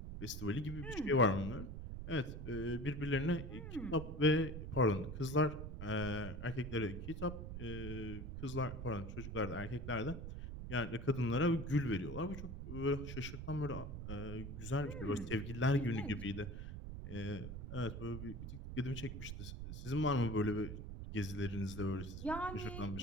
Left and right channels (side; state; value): right; noise; rumble, 7 dB below the sound